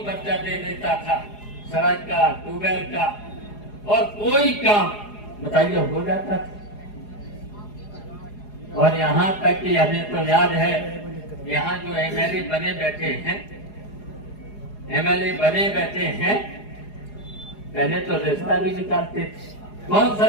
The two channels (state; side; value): late; right; 4.8 ms